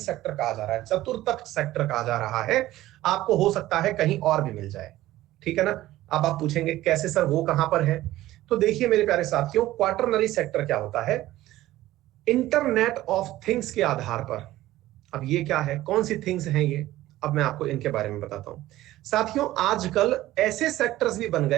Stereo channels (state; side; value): quieter; left; 15.7 dB